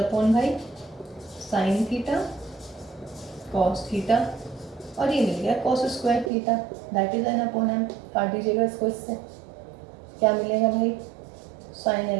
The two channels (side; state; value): left; drops out; at 6.3 s